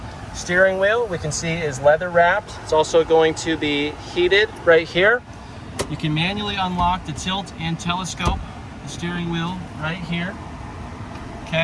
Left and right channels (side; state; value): both; identical; correlation 1.00